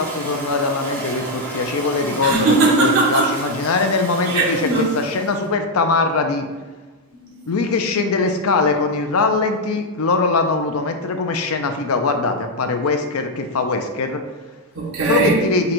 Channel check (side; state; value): both; normal; correlation 0.02